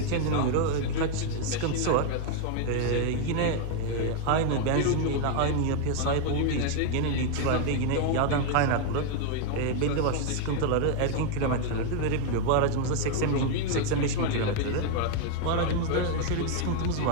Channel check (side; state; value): both; different; correlation 0.00